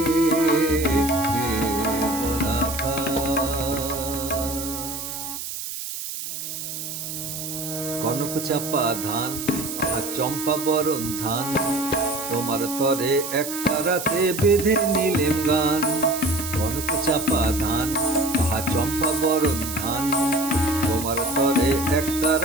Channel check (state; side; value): noise; right; hiss, 7 dB below the sound